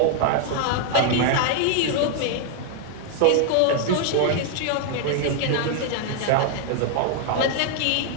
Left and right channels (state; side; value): different; both; correlation 0.00